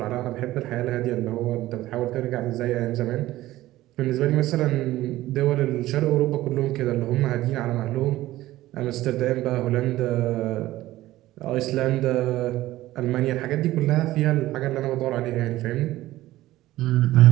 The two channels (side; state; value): left; quieter; 16.0 dB